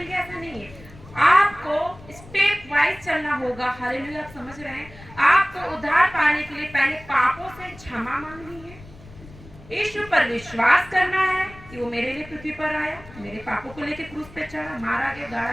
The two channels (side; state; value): left; noise; rumble, 20 dB below the sound